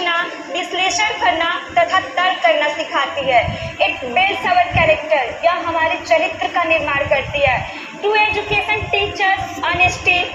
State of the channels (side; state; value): both; identical; correlation 1.00